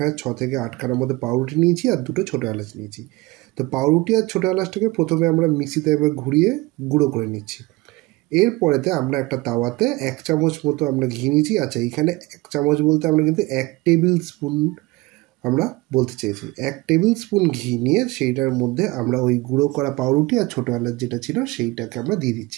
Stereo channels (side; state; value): left; quieter; 21.9 dB